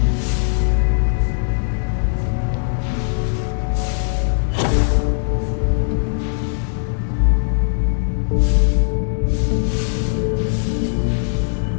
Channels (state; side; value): silent; right; digital silence